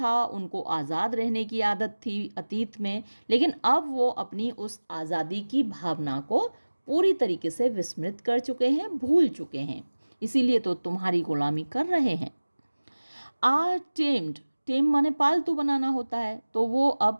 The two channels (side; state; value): both; inverted; correlation -1.00